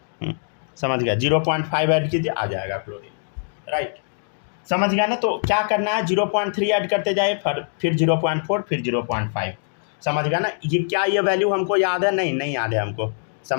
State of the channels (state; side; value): silent; right; digital silence